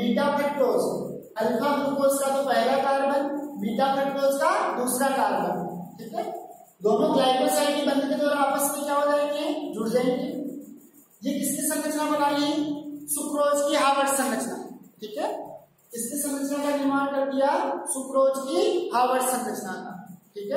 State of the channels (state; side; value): identical; both; correlation 1.00